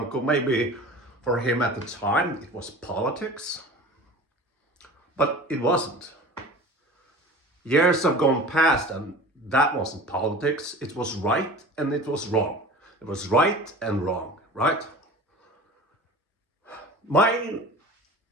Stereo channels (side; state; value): both; normal; correlation 0.38